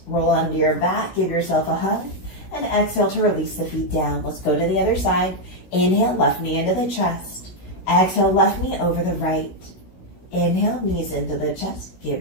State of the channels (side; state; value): right; late; 16 ms